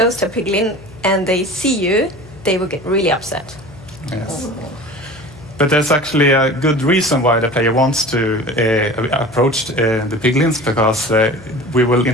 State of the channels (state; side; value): noise; left; hum, 20 dB below the sound